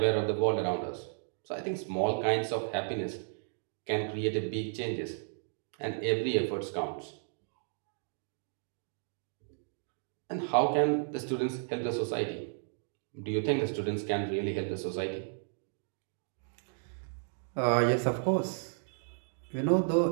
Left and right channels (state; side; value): silent; left; digital silence